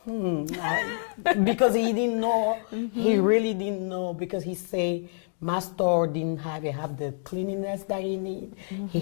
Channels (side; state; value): right; silent; 60 dB below the other